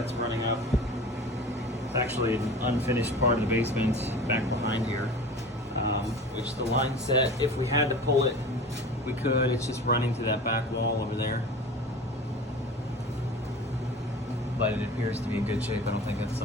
running up. It's actually an unfinished part of the basement back behind here. Which the line set, if we had to pull it, we could. It's just running to that back wall over there. But it appears to be in good shape. I don't think that's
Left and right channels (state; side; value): normal; both; correlation 0.37